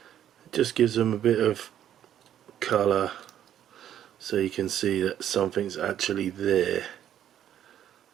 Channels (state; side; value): quieter; left; 10.6 dB